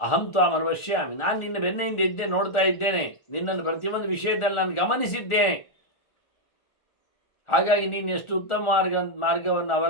ಅಹಂ ತ್ವಾಂ ಅನುಪಶ್ಯಾಮಿ. ನಾನು ನಿನ್ನ ಬೆನ್ನೆಯಿಂದ ಇದ್ದೆ, ನೋಡ್ತಾ ಇದ್ದೇನೆ. ನಿನ್ನನ್ನು ಪ್ರತಿಯೊಂದು ವಿಷಯದಲ್ಲಿ ನಾನು ಗಮನಿಸಿದ್ದೇನೆ. ಹಾಗಾಗಿ ನೀನು ಎಷ್ಟು ಉತ್ತಮ ಮಾರ್ಗವನ್ನು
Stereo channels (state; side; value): late; right; 1.4 ms